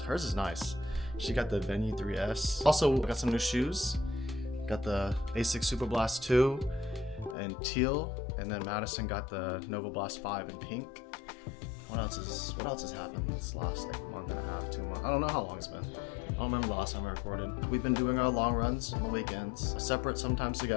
Hers is nice. She got the Venue 3S. Also got some new shoes. Got the Asics Super Blast 2 in teal, and then Madison got the Nova Blast 5 in pink. What else has happened this last month and a half, 2 months? I don't know how long it's been. I don't remember the last time I recorded. We've been doing our long runs on the weekends, separate, sometimes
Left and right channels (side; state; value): right; drops out; at 7.4 s